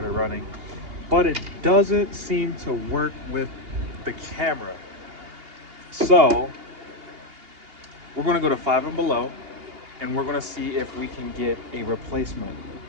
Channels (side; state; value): left; late; 2.8 ms